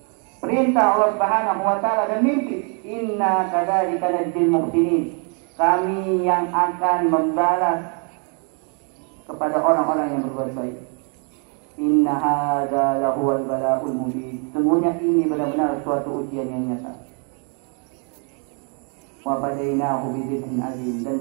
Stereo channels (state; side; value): quieter; left; 38.8 dB